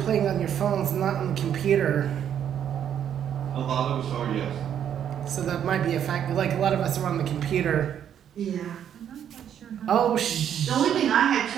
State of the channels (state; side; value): quieter; left; 9.3 dB